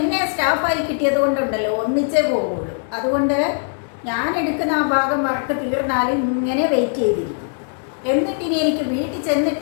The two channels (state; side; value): silent; right; digital silence